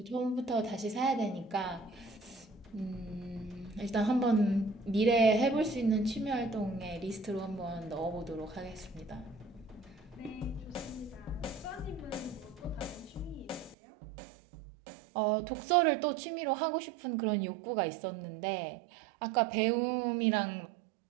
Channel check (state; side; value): drops out; left; at 13.8 s